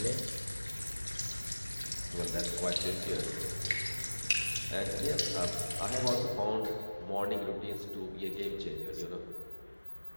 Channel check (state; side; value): inverted; both; correlation -1.00